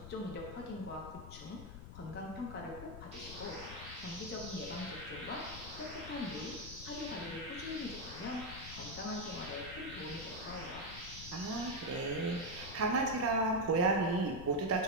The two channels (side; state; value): left; noise; rumble, 11 dB below the sound